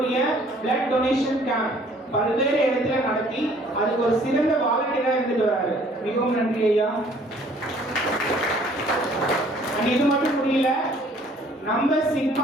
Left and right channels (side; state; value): both; normal; correlation 0.57